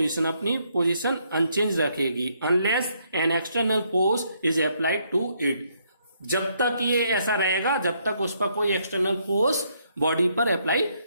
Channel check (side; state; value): both; inverted; correlation -0.72